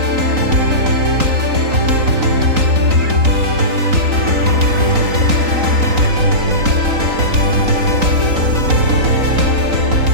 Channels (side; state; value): left; late; 3.9 ms